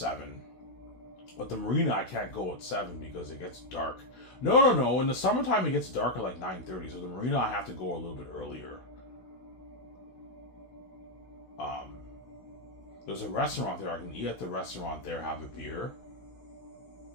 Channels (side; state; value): right; late; 16 ms